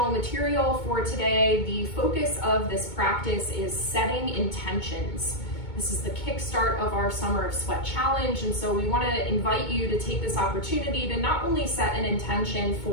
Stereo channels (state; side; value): late; right; 2.2 ms